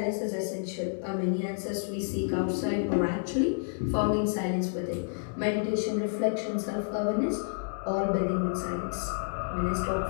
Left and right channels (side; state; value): right; silent; digital silence